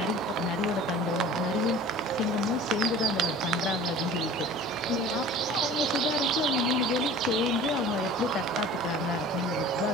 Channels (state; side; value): normal; both; correlation 0.43